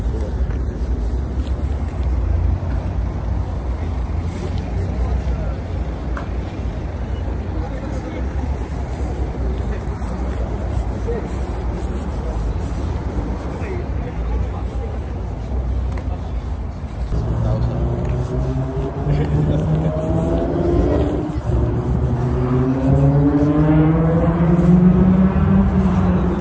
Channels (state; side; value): identical; both; correlation 1.00